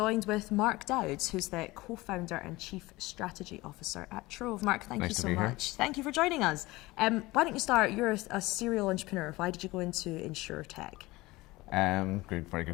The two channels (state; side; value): quieter; right; 20.4 dB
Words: with Mark Dowds, who's the co-founder and chief strategy officer at Trov. Mark, thank you so much. Thank you for joining us. Why don't you start? You're a serial entrepreneur. Why did you go into InsurTech? Very